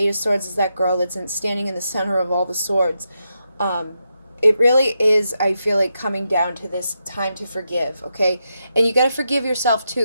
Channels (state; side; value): inverted; both; correlation -0.85